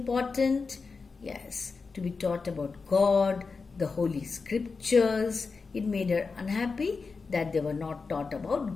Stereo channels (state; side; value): quieter; right; 4.6 dB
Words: Yes, to be taught about God, the Holy Scriptures. It made her unhappy that they were not taught